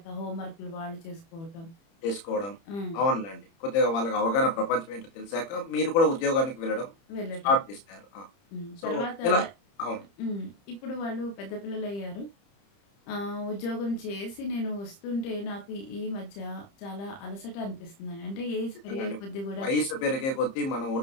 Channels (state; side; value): late; right; 30 ms